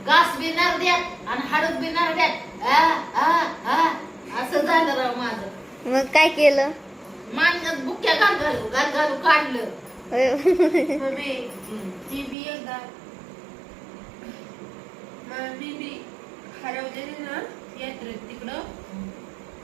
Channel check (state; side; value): drops out; left; at 12.4 s